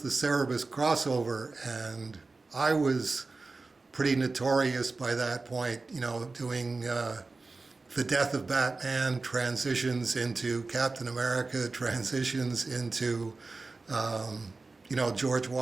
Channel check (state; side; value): quieter; left; 3.7 dB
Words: Cerebus crossover, and I was pretty notorious by that point, doing the death of Batman, transitions into Captain America, transitions into, George